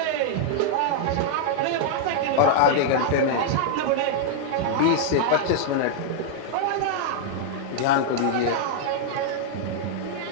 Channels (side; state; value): both; different; correlation -0.01